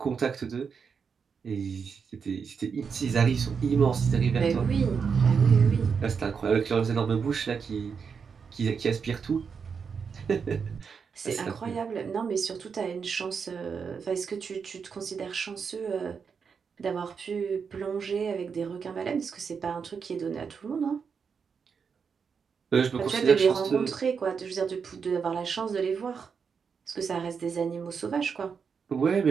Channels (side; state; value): left; quieter; 6.1 dB